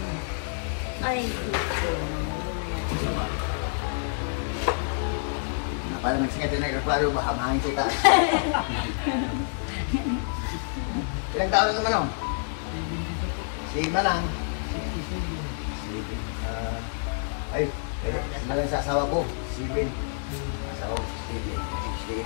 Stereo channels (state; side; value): silent; right; digital silence